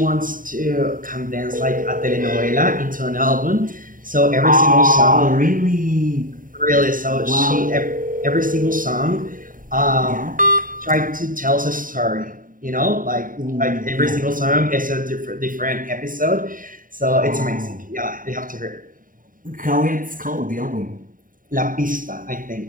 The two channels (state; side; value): late; left; 0.40 ms